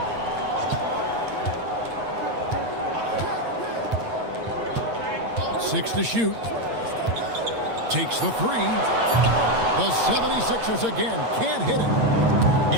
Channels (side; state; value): left; late; 8.7 ms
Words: Six to shoot. Takes the three. The 76ers again can't hit it.